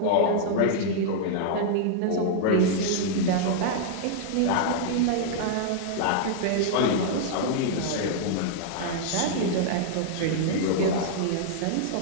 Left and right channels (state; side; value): different; both; correlation -0.01